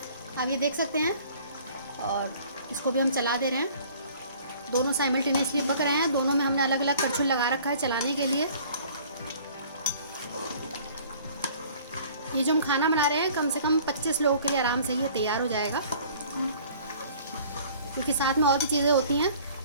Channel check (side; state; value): both; inverted; correlation -0.52